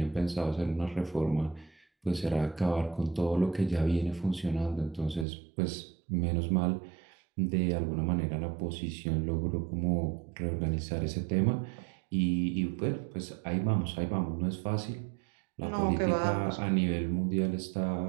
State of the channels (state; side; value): drops out; left; at 5.2 s